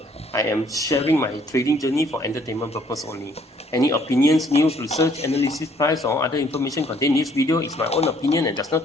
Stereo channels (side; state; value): both; normal; correlation 0.63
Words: I am sharing my trading journey for entertainment purpose only. Any opinions, news, research, analysis, price, or other information contained in this video is my own opinion and does not